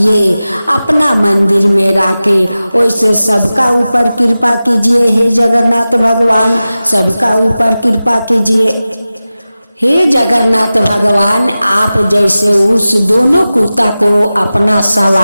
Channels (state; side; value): inverted; both; correlation -0.95